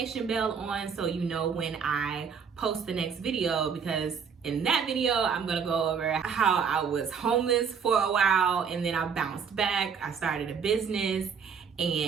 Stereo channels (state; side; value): quieter; left; 6.5 dB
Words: bell on so you know when I post the next video, because in that video, I'm gonna go over how I was homeless for a while and then I bounced back. I started a business